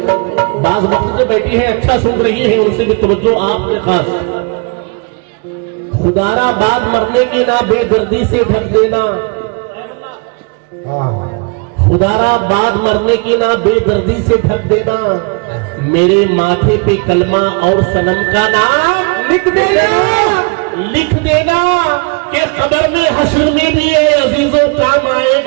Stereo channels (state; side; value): quieter; left; 33.7 dB